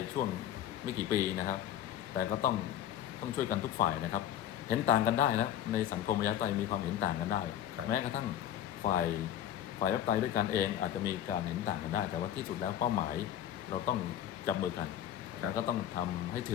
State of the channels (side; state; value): right; quieter; 10.9 dB